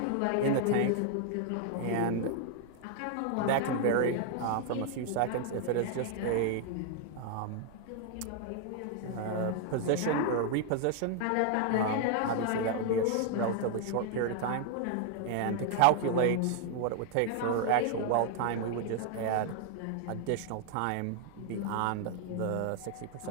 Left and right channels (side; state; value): both; different; correlation 0.00